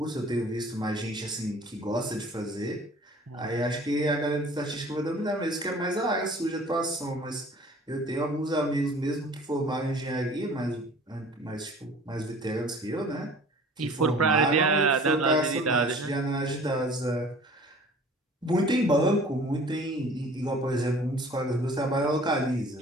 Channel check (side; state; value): both; normal; correlation 0.48